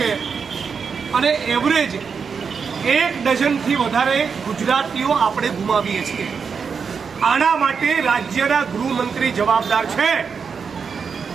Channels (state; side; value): quieter; left; 5.9 dB